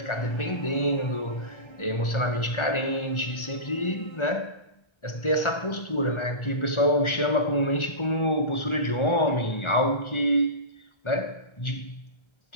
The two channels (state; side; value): late; right; 1.4 ms